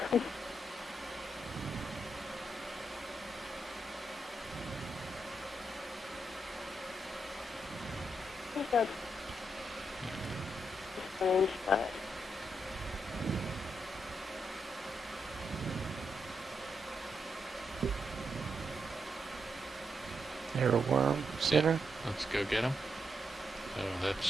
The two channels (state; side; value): normal; both; correlation 0.81